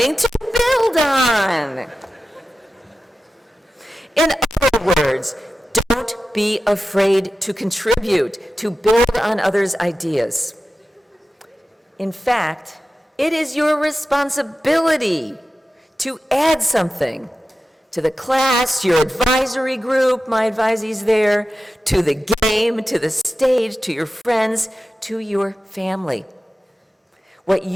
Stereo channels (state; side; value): normal; both; correlation 0.93